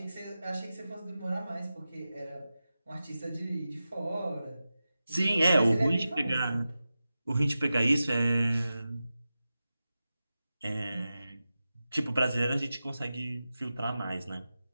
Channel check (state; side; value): inverted; both; correlation -0.94